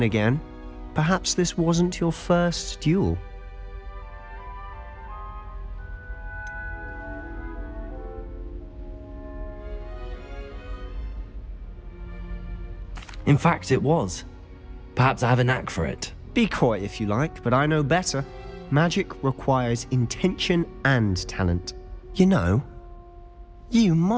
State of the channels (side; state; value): both; identical; correlation 1.00